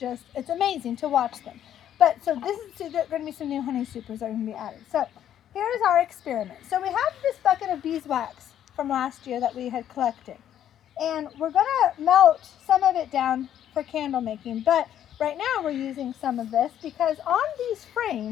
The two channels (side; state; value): right; quieter; 10.6 dB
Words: it's amazing to watch them. But so there's going to be some new honey supers that are going to be added. So here's our experiment. So we have this bucket of beeswax from last year that we had collected. And we're going to melt some of it down for candle making. But right now we're using some of this because on these